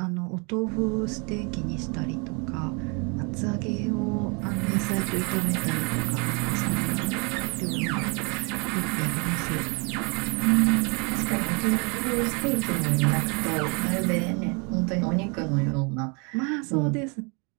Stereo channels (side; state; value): left; quieter; 32.7 dB